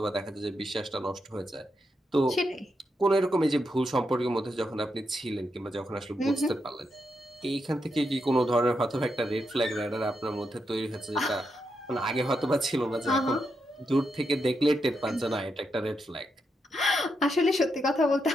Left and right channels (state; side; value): normal; both; correlation 0.83